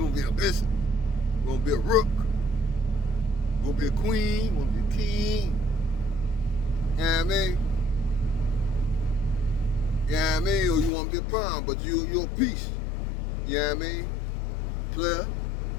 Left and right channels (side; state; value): right; drops out; at 10.9 s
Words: wanna be a bishop, we wanna be a rook, we wanna be a queen, we wanna be a king. You know what I mean? You know what I mean? Or you wanna be a pawn, but you're a piece. You know what I mean? Player.